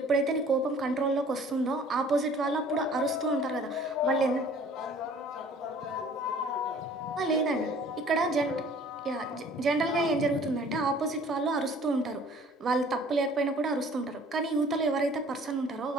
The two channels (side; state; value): both; normal; correlation 0.52